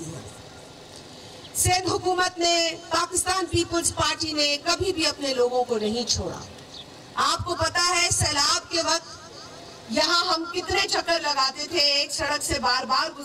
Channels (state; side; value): identical; both; correlation 1.00